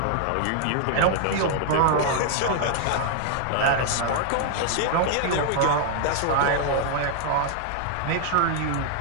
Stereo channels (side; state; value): both; different; correlation 0.00